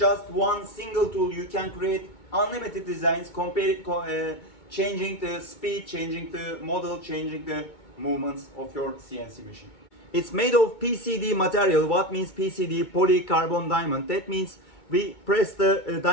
one single tool you can create unlimited designs, changing the speed, changing the model, changing the movements of your CNC machine. It's made of PCD material. What means PCD? Polycarbon diamond. That means we press the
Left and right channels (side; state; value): right; late; 2.2 ms